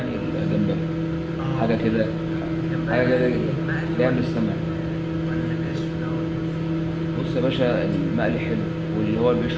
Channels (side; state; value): both; identical; correlation 1.00